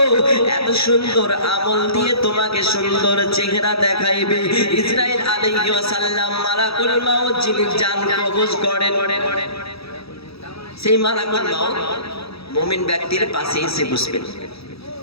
এত সুন্দর আমল দিয়ে তোমাকে সুন্দর চেহারা দেখাইবে। ইসরাইল আলাইহিস সালাম মালাকুল মাউত যিনি জান কবজ করেন, সেই মালাকুল মাউত মুমিন ব্যক্তির পাশে এসে বসবেন,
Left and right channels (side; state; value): right; late; 0.77 ms